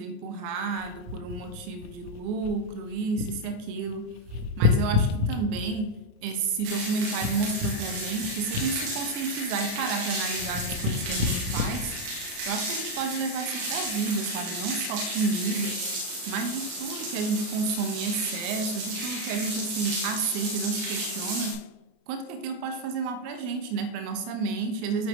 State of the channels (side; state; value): left; late; 28 ms